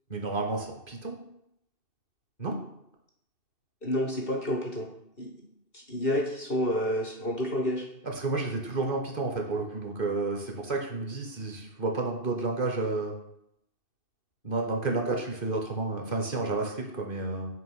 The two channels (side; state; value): right; late; 2.5 ms